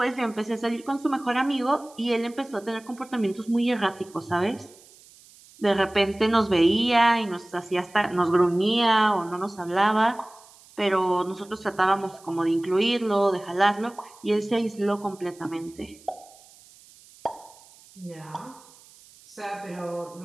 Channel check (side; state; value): right; noise; hiss, 25 dB below the sound